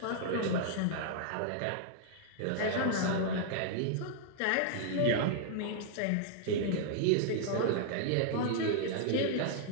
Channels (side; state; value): both; different; correlation -0.01